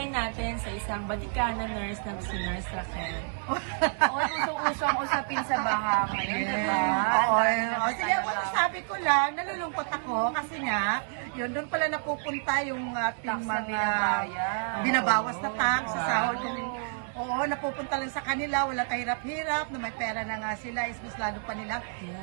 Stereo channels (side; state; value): left; silent; digital silence